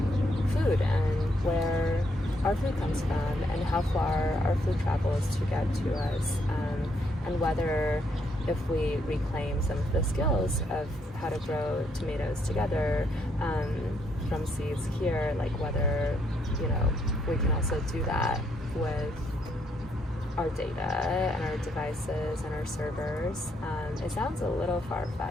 food and where our food comes from and how far our food travels to get to us, and whether if we reclaim some of the skills of how to grow tomatoes together from seeds here, like whether we can also do that with our data and our devices and our servers. It sounds a little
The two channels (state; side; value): normal; both; correlation 0.74